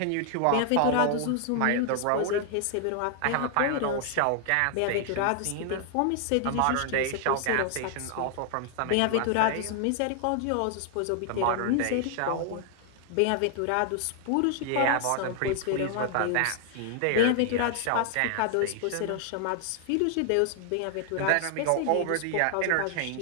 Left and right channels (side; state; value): both; different; correlation 0.00